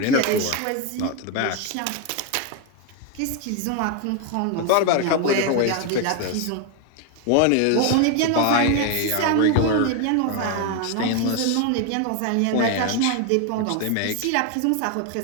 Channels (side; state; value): both; different; correlation 0.01